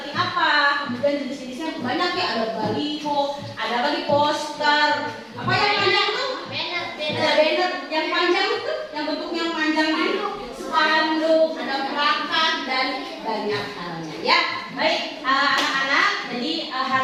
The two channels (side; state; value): both; identical; correlation 1.00